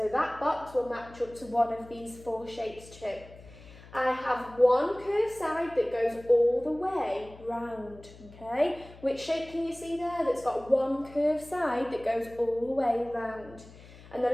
that box will match up to one of these 4 shapes too. I have 1 curved side that goes all the way round, okay? Which shape can you see there that's got 1 curved side that goes all the way round? And the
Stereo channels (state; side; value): noise; left; hum, 20 dB below the sound